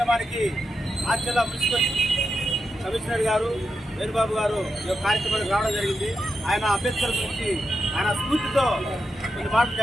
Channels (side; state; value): both; normal; correlation 0.87